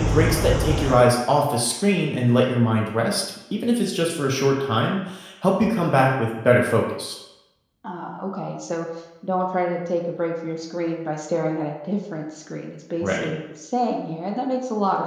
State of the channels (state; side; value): identical; both; correlation 1.00